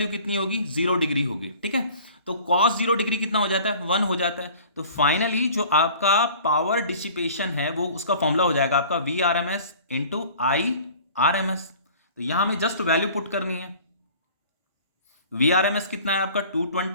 कितनी होगी, 0 डिग्री होगी, ठीक है। तो कॉस 0 डिग्री कितना हो जाता है, 1 हो जाता है। तो फाइनली जो आपका पावर डिसिपेशन है वो उसका फॉर्मूला हो जाएगा आपका V R M S into I R M S. तो यहां हमें जस्ट वैल्यू पुट करनी है। वी आर एम एस कितना है आपका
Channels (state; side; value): inverted; both; correlation -0.47